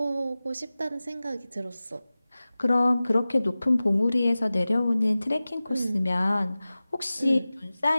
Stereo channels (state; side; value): inverted; both; correlation -0.97